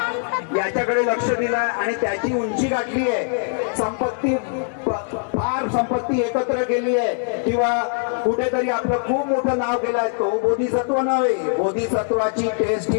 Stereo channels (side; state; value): right; silent; 64 dB below the other